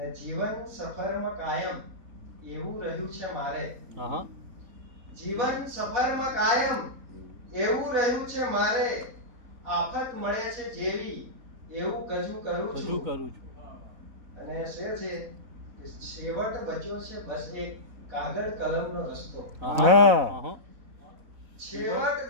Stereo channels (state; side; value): late; left; 4.0 ms